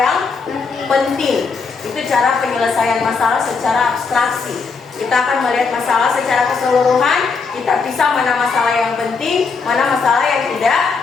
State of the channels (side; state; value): right; quieter; 4.9 dB